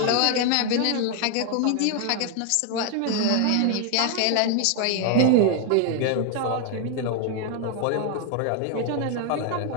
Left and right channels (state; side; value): different; both; correlation 0.00